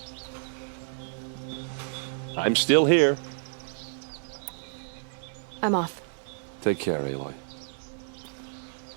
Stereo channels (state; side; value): silent; left; digital silence